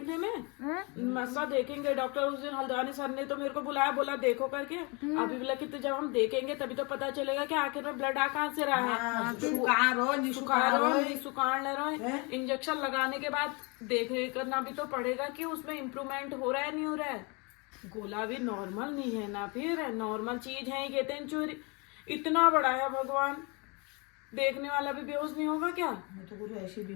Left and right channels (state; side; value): quieter; right; 30.0 dB